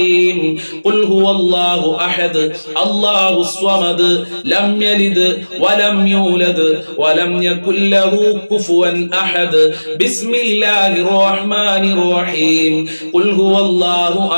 ഖുൽ ഹുവല്ലാഹു അഹദ് അല്ലാഹുസ് സ്വമദ് ലം യലിദ് വലം യൂലദ് വലം യകുൽ ലഹു കുഫുവൻ അഹദ്. ബിസ്മില്ലാഹിർ റഹ്മാനിർ റഹീം. ഖുൽ ഹുവല്ലാഹു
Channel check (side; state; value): both; inverted; correlation -1.00